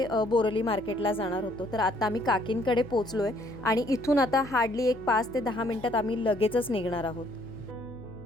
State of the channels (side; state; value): left; noise; hum, 18 dB below the sound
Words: बोरोली मार्केटला जाणार होतो। तर आता आम्ही काकींकडे पोचलो आहे आणि इथून आता हार्डली एक 5 ते 10 मिनिटात आम्ही लगेचच निघणार आहोत।